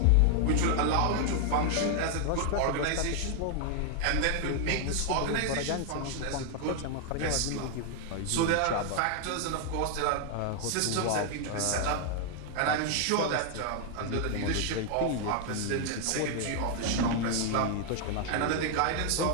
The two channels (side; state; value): both; different; correlation 0.00